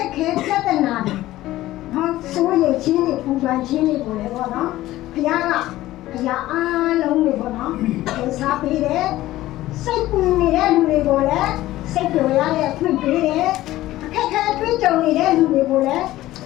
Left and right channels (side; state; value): right; quieter; 15.8 dB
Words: က်ခဲပြဿနာတွေနော်စိုးရိမ်ခြင်းတွေပူပန်ခြင်းတွေပေါ်လေပေါ့နော်ဘုရားကအရာအားလုံးတွေပေါ့နော်ဒီစားပေးတယ်စိတ်ပူနေတဲ့လူတွေကိုလည်းစိတ်ကြော်ရတဲ့အခွင့်ပေးတယ်အခက်ခဲတွေးကြုံနေတဲ့လူတွေကိုလည်း